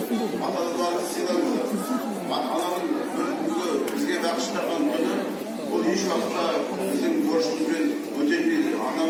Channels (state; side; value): identical; both; correlation 1.00